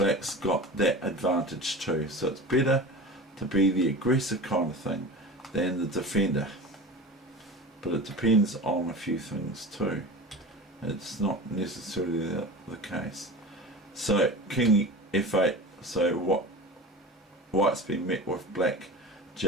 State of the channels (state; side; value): normal; both; correlation 0.33